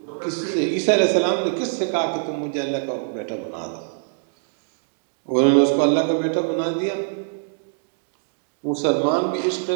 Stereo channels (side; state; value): left; silent; digital silence